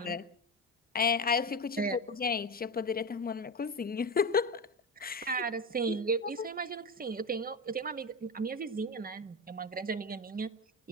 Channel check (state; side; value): normal; both; correlation 0.19